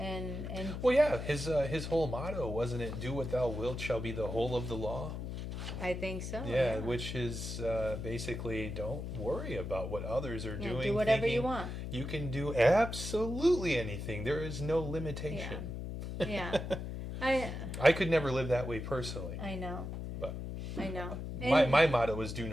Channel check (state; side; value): noise; left; hum, 6 dB below the sound